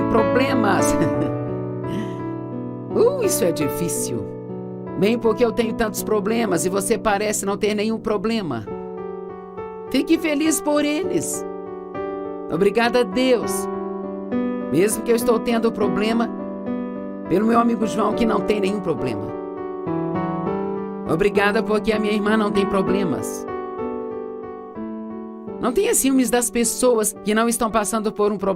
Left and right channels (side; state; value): both; identical; correlation 1.00